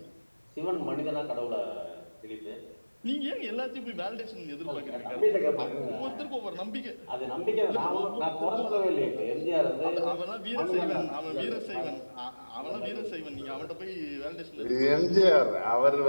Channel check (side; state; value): both; inverted; correlation -1.00